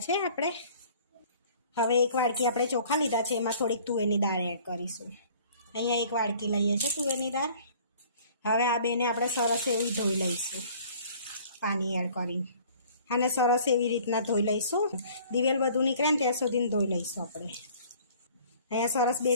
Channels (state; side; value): inverted; both; correlation -0.52